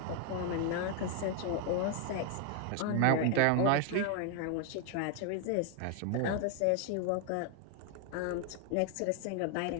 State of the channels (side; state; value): both; different; correlation 0.00